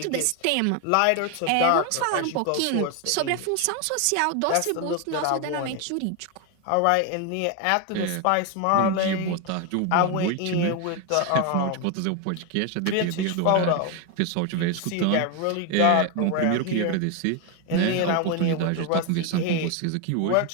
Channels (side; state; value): both; different; correlation 0.01